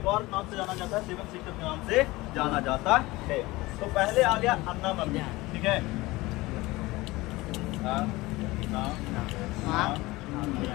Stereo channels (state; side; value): quieter; right; 20.5 dB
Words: और नाम से जाना जाता है, 7 सेक्टर के नाम से जाना जाता है। तो पहले आ गया अन्ना मम्मी, ठीक है।